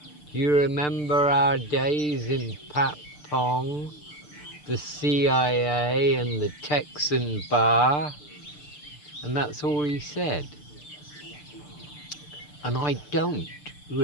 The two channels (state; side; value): late; right; 6.7 ms